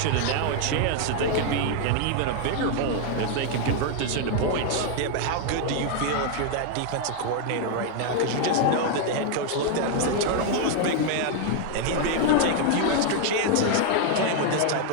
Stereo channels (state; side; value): different; both; correlation 0.00